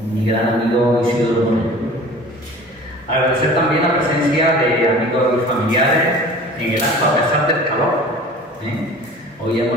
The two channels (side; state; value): both; normal; correlation 0.43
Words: mi gran amigo Isidoro Moreno. Agradecer también la presencia de amigos y familiares en el acto a pesar del calor. Hoy